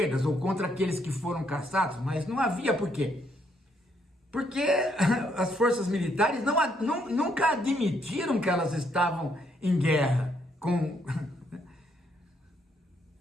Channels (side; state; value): both; normal; correlation 0.72